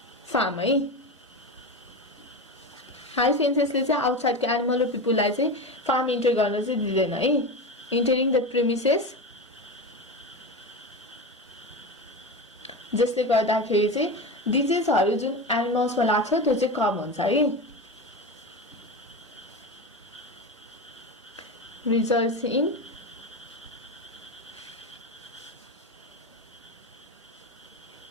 फार्म है। हाई फेन्सेसले चाहिँ आउटसाइडको एनिमल र पिपुललाई चाहिँ फार्म इन्टर गर्न चाहिँ दिँदैन है। इन्टरिङ द प्रिमिसेस, जसले गर्दाखेरि चाहिँ डिजिजहरू जुन एनिमल्समा लाग्छ त्यो चाहिँ कम हुन्छ है। Results in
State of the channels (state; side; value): normal; both; correlation 0.23